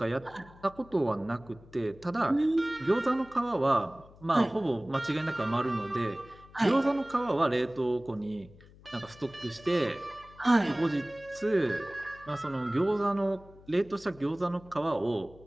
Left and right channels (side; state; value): left; noise; hum, 23 dB below the sound